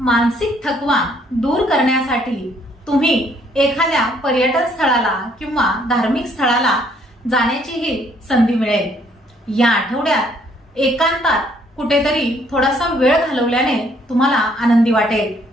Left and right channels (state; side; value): normal; both; correlation 0.65